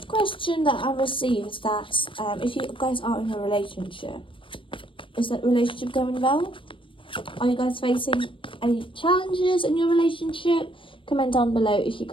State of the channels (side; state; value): right; late; 0.25 ms